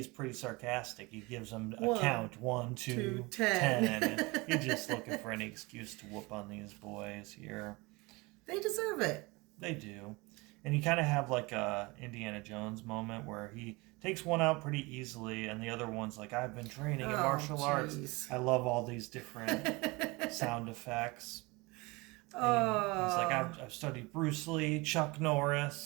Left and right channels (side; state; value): left; quieter; 24.7 dB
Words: pretty sarcastic. He gives them a count, 1, 2, 10. And he's just looking for any excuse to whoop on these boys here. They deserve it. They do. And you kind of have like a Indiana Jones moment where he takes one out pretty easily, and the other one's like, "I've been training in martial arts." I love all these different sound effects. And he's like, I've studied Bruce Lee, Chuck